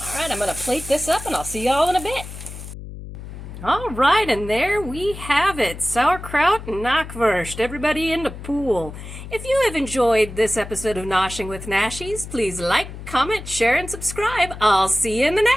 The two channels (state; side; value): noise; left; hum, 12 dB below the sound